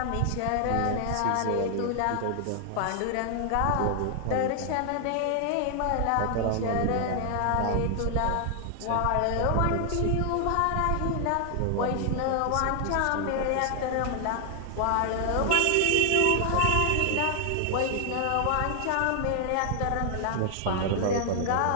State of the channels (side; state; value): both; different; correlation 0.00